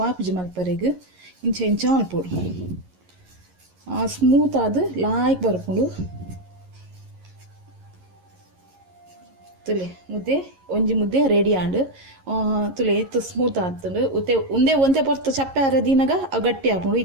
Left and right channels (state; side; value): late; left; 11 ms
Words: ವಾಪುಜಿ ಮಲ್ಪರೆಗೆ ಇಂಚ ಇಂಚ ಮಲ್ಪೊಡು ಸ್ಮೂತ್ ಆದ ಲಾಯ್ಕ್ ಬರ್ಪುಂಡು ತುಲೆ ಮುದ್ದೆ ಒಂಜಿ ಮುದ್ದೆ ರೆಡಿ ಆಂಡು ತುಲೆ ಇತ್ತು ಸ್ಮೂತ್ ಆತುಂಡು ಉತ್ತೆ ಒಂದೇ ಪೊರ್ತು ಚಪ್ಪೆ ಅರದಿನಾಗ ಅವು ಗಟ್ಟಿ ಹಾಕೊಂಡು